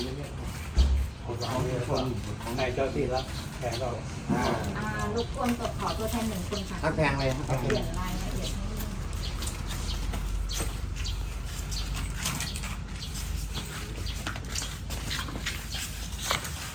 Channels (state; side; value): identical; both; correlation 1.00